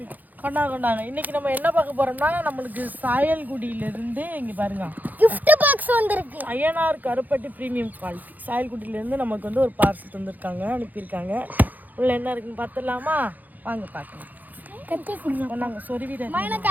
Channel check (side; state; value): left; late; 0.083 ms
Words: கொண்டாங்க. இன்னைக்கு நம்ம என்ன பார்க்க போறோம்னா, நம்மளுக்கு சாயல்குடியில இருந்து இங்க பாருங்க gift பாக்ஸ் வந்திருக்கு. ஐயனார் கருப்பட்டி பிரீமியம் குவாலிட்டி சாயல்குடியில இருந்து நமக்கு வந்து ஒரு பார்சல் தந்திருக்காங்க, அனுப்பியிருக்காங்க. உள்ள என்ன இருக்குன்னு பார்த்துடலாமா? வாங்க பார்க்கலாம். கட்டி கொடுங்க. கொண்டாங்க சொருவிட. எனக்கு